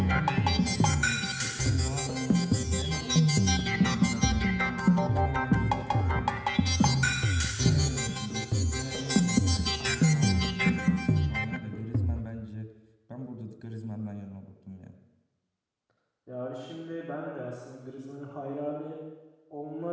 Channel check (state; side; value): identical; both; correlation 1.00